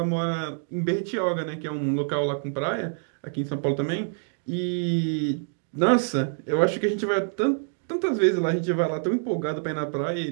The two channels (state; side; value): silent; left; digital silence